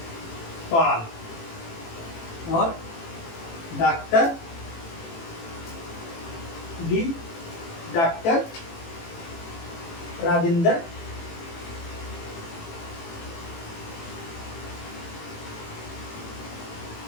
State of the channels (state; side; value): late; right; 18 ms